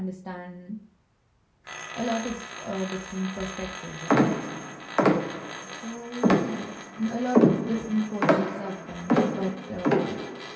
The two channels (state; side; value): identical; both; correlation 1.00